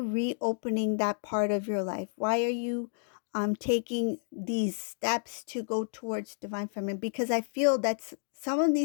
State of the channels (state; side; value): silent; right; digital silence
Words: that part of your life? Why are you taking these steps to go towards divine feminine? Because I feel that some of